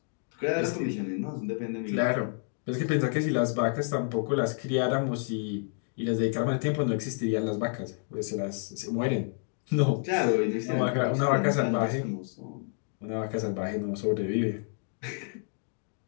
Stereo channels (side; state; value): right; silent; 58 dB below the other